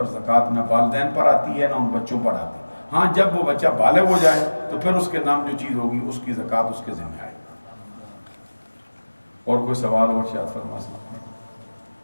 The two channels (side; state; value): both; inverted; correlation -1.00